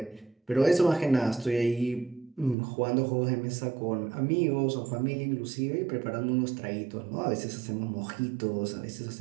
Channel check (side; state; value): left; drops out; at 2.6 s